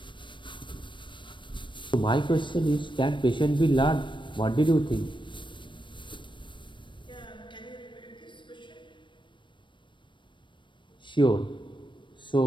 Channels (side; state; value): right; late; 0.23 ms